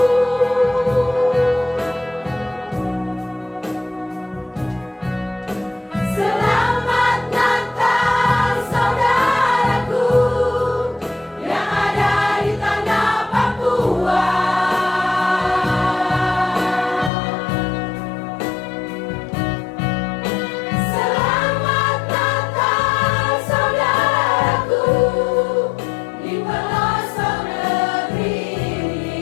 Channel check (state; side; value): drops out; right; at 17.1 s